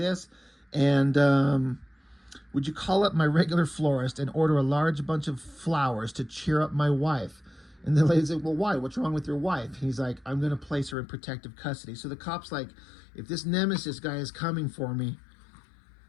and would you call up my regular florist and order a large bunch of flowers to cheer up my wife? And the lady's like, well, why? What's wrong with your wife? He's like, I'm going to place her in protective custody. So the cop's like, if this Nemesis guy is coming for me,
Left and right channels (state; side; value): drops out; right; at 11.0 s